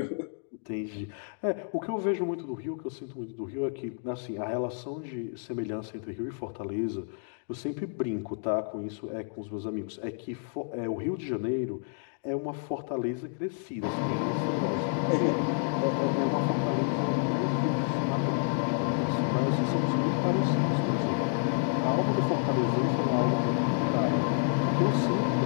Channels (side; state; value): right; silent; 58 dB below the other